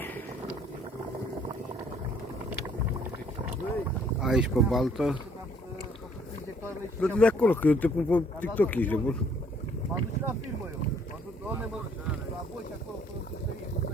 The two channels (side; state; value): both; normal; correlation 0.62